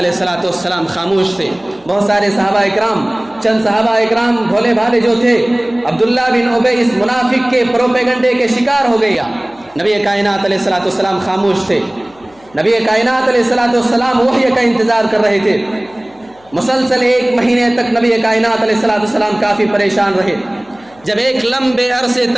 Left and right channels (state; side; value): noise; left; hum, 29 dB below the sound